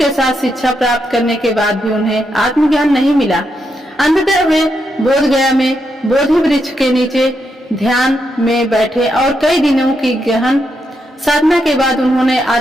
साथ शिक्षा प्राप्त करने के बाद भी उन्हें आत्मज्ञान नहीं मिला। अंततः वे बोधगया में बोधि वृक्ष के नीचे ध्यान में बैठे और कई दिनों की गहन साधना के बाद उन्होंने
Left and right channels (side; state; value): both; normal; correlation 0.82